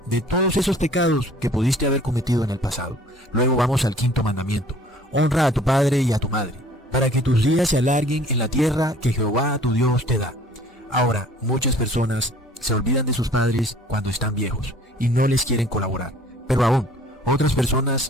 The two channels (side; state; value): both; normal; correlation 0.52